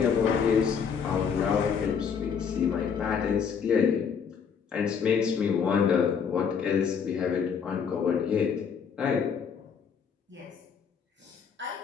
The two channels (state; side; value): quieter; right; 6.7 dB